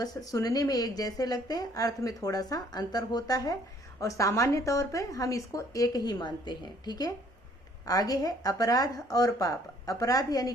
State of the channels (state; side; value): normal; both; correlation 0.61